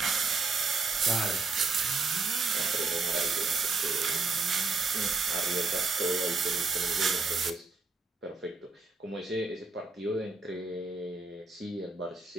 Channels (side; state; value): left; quieter; 4.1 dB